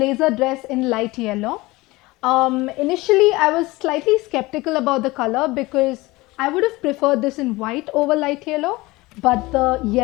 dress in light yellow. Initially I was slightly skeptical about the color because I would have preferred this in white over light yellow, but the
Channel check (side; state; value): right; quieter; 21.1 dB